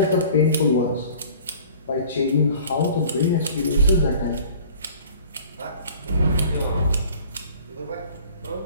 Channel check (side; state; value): both; inverted; correlation -0.48